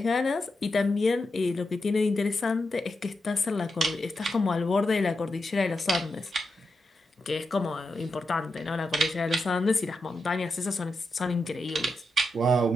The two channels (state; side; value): normal; both; correlation 0.87